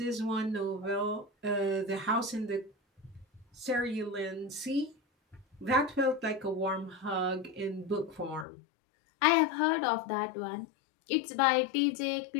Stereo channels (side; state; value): right; drops out; at 8.5 s